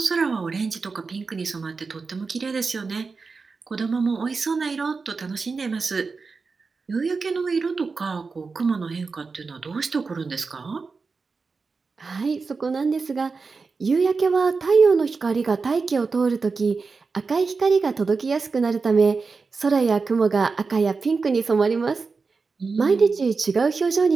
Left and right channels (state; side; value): quieter; left; 4.5 dB